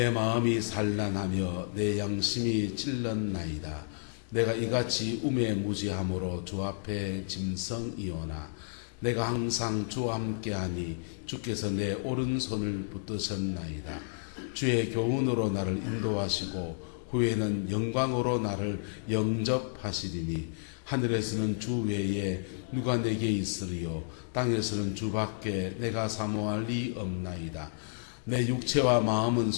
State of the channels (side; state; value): right; silent; digital silence